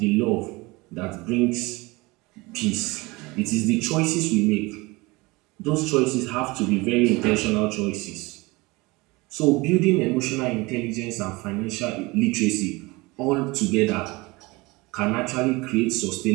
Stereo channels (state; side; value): quieter; left; 23.5 dB